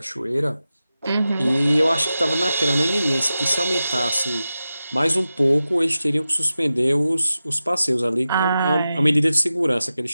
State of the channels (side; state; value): both; inverted; correlation -0.93